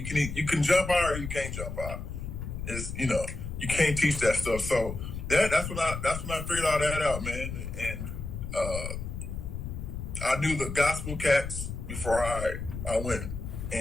can jump out or you can't jump out. It's, you know, you can't teach that stuff. So that's when I figured all that out, man. And I knew the gospel cats before I went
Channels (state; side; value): noise; left; rumble, 6 dB below the sound